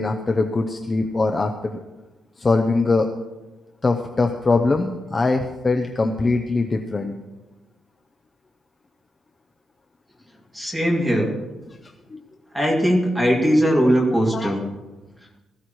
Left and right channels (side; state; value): both; normal; correlation 0.91